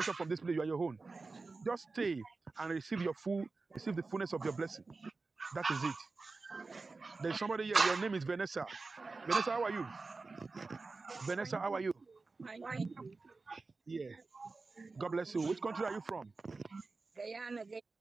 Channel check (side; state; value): left; quieter; 3.9 dB